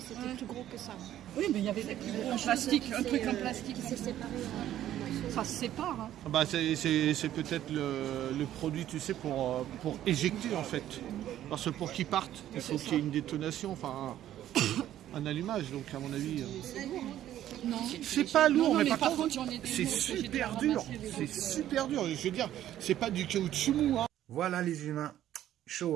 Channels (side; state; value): left; quieter; 12.2 dB